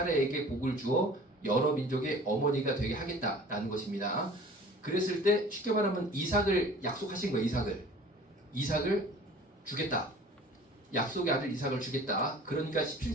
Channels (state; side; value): normal; both; correlation 0.46